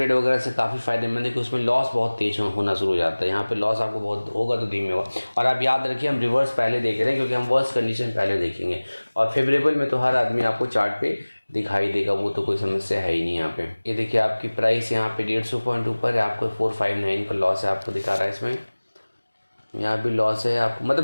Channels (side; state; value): both; inverted; correlation -1.00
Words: वगैरह से काफ़ी फायदेमंद है कि उसमें लॉस बहुत तेज होना शुरू हो जाता है। यहाँ पे लॉस आपको बहुत होगा तो धीमे होगा। और आप याद रखिए हम रिवर्स पहले देख रहे हैं, क्योंकि हम वर्स्ट कंडीशन पहले देखेंगे और फेवरेबल में तो हर आदमी आपको चार्ट पे दिखाई देगा, वो तो कोई समस्या है ही नहीं। यहाँ पे ये देखिए आपकी प्राइस यहाँ पे 150 पॉइंट ऊपर है, आपको 459 का लॉस है, आपको दिखा रहा है इसमें। यहाँ भी लॉस है आपको,